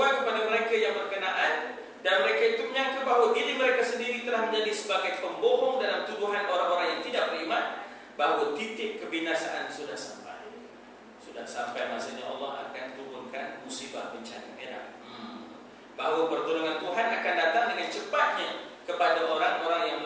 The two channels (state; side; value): identical; both; correlation 1.00